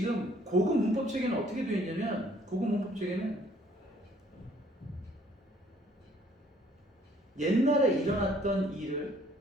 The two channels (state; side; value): normal; both; correlation 0.60